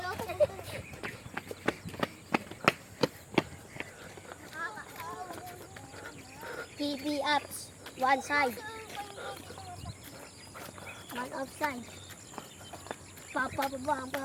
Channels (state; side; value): identical; both; correlation 1.00